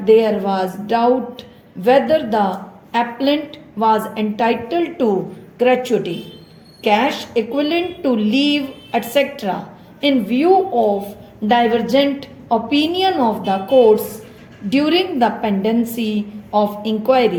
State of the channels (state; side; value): identical; both; correlation 1.00